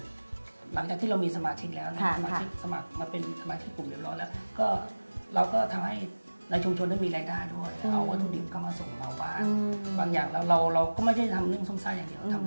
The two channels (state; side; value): inverted; both; correlation -1.00